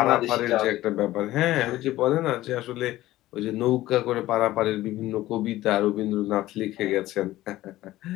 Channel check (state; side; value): quieter; right; 15.9 dB